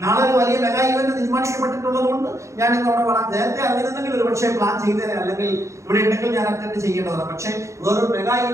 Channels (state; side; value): late; left; 0.14 ms